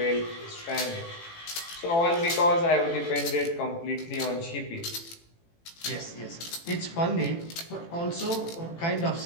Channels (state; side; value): late; right; 18 ms